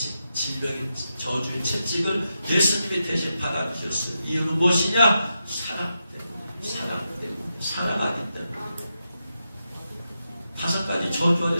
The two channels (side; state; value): both; inverted; correlation -0.87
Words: 질병의 저주의 채찍을 예수님이 대신 받아주셨어요. 이유는 무엇이냐? 사랑 때문에. 사랑하기 때문에. 5가지 저주 안에